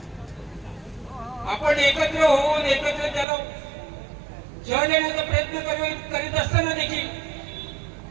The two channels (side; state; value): left; drops out; at 3.2 s